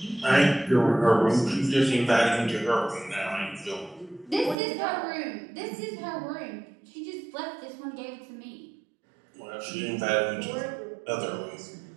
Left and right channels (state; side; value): drops out; left; at 4.5 s